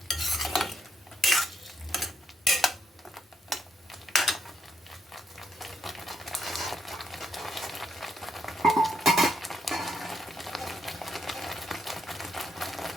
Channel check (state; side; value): normal; both; correlation 0.77